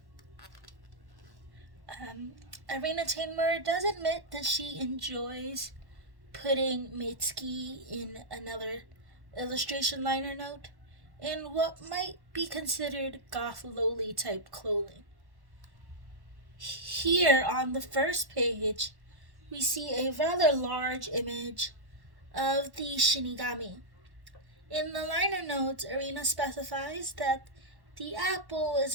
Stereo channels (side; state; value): left; late; 1.1 ms